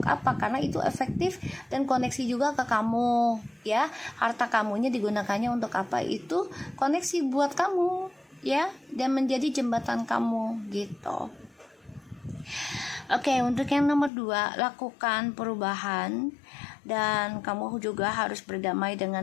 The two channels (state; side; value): drops out; right; at 14.1 s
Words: apa, karena itu efektif dan koneksi juga ke kamu ya. Harta kamunya digunakannya untuk apa, itu koneksi buat kamu ya, dan menjadi jembatan kamu gitu. Oke, untuk yang nomor 2, lakukan perubahan. Dan kamu juga harus berdamai